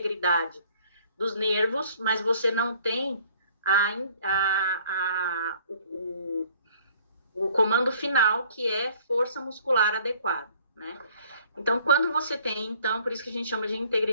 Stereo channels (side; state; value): both; inverted; correlation -0.57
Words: dos nervos, mas você não tem o comando final, que é força muscular adequada, né? Então, quando você tem, então, por isso que a gente chama de